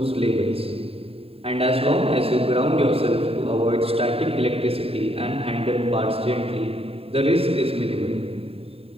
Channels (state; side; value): late; left; 0.28 ms